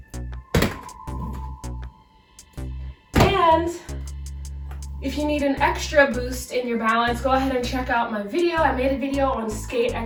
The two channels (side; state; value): both; identical; correlation 1.00